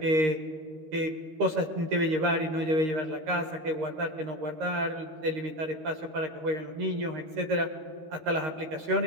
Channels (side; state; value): left; late; 13 ms